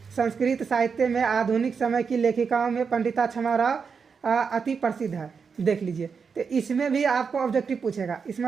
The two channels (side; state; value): left; quieter; 5.8 dB